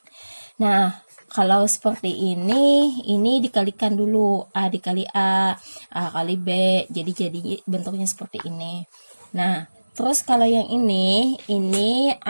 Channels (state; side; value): inverted; both; correlation -1.00